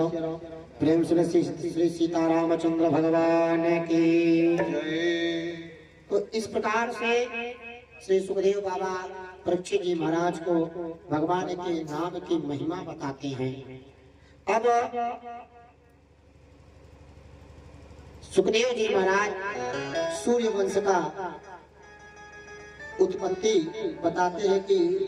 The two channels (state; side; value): identical; both; correlation 1.00